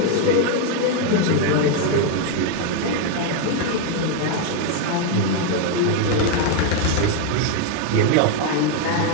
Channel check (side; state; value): both; different; correlation 0.01